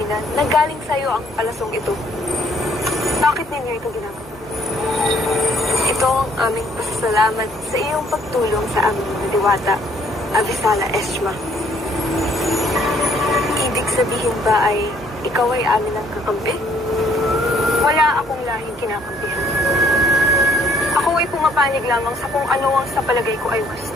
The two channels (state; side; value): noise; left; hum, 25 dB below the sound